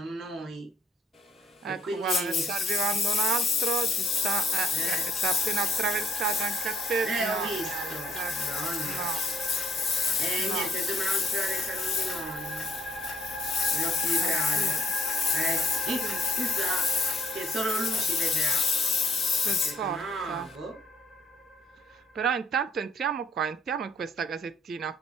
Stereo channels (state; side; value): normal; both; correlation 0.66